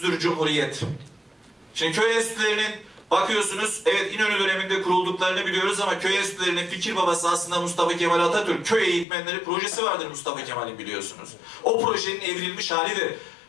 Cumhuriyet. Şimdi köy enstitülerinin bakıyorsunuz, evet İnönü döneminde kurulduklarını biliyoruz ama köy enstitülerinin fikir babası aslında Mustafa Kemal Atatürk. Köy eğitmenleri projesi vardır Mustafa Kemal'in biliyorsunuz. O projenin evrilmiş halidir.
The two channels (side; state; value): right; drops out; at 9.1 s